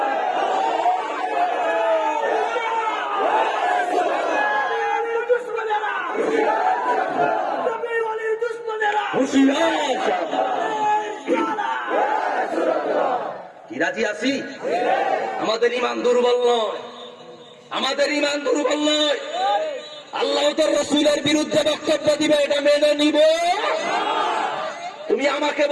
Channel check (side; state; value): both; identical; correlation 1.00